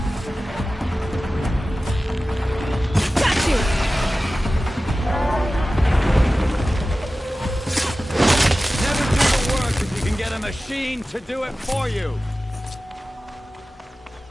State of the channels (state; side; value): normal; both; correlation 0.96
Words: Got you! Never do the work if you can get a machine to do it for you!